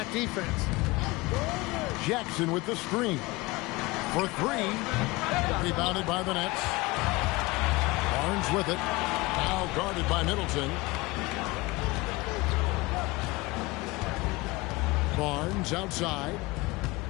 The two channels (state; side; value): quieter; right; 22.6 dB